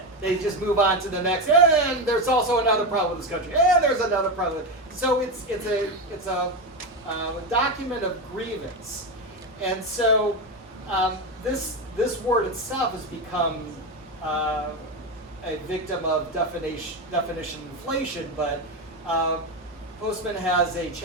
They just move on to the next, and there's also another problem with this country, and there's another problem. So it's a document of grievance. And so this word itself has become a victim of definition inflation, but Postman has a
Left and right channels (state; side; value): normal; both; correlation 0.14